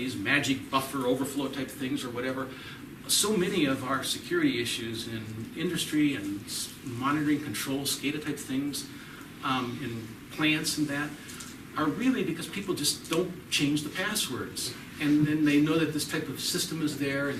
magic buffer overflow type things or whatever. So many of our security issues in industry and monitoring control, SCADA type things, in plants and that, are really because people just don't change the passwords. And then they know that this type of system is there,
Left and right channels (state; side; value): identical; both; correlation 1.00